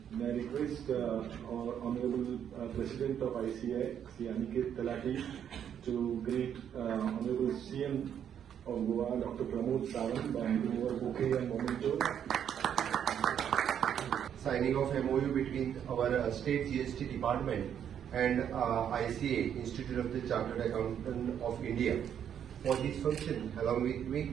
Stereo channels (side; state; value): left; quieter; 9.0 dB